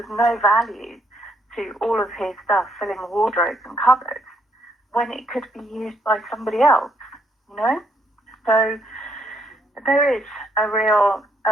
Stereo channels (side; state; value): both; normal; correlation 0.72